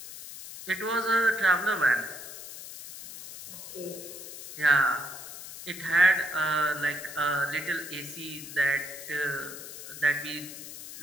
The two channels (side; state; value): left; noise; hiss, 12 dB below the sound